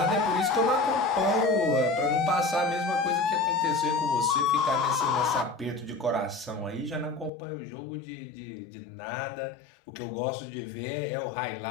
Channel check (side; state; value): right; drops out; at 7.3 s